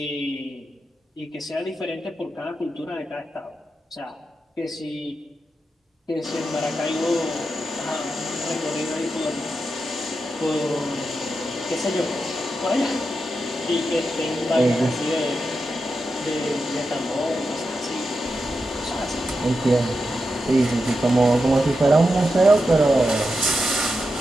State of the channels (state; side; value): normal; both; correlation 0.88